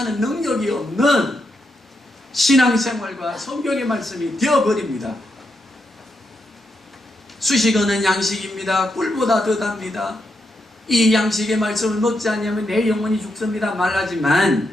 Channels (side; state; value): both; normal; correlation 0.82